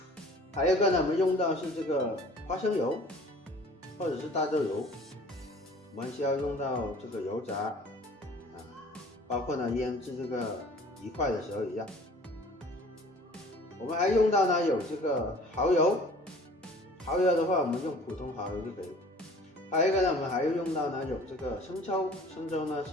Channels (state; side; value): normal; both; correlation 0.49